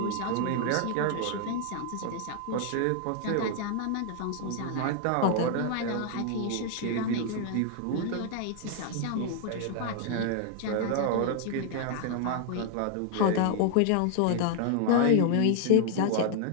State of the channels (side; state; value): both; different; correlation 0.00